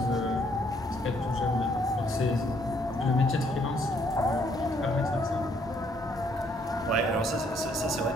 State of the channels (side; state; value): both; normal; correlation 0.68